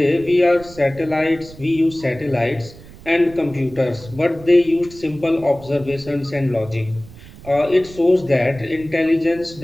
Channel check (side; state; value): right; noise; rumble, 19 dB below the sound